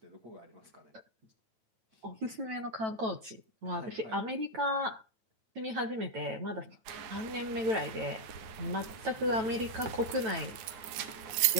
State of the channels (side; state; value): left; late; 9.6 ms